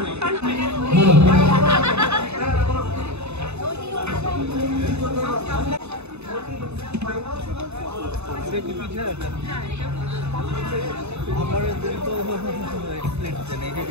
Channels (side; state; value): left; late; 0.81 ms